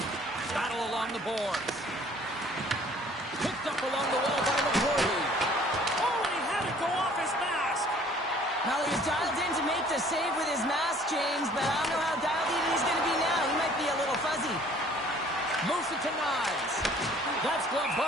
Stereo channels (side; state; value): both; normal; correlation 0.55